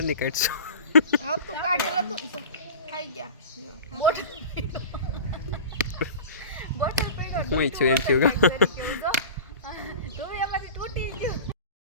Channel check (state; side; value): inverted; both; correlation -0.35